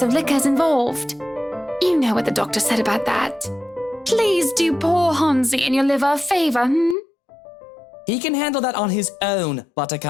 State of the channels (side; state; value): right; drops out; at 7.0 s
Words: of liquor's involved. You know what the doctor said about that. Please do poor Hansi and your liver a favor, He can handle that on his own,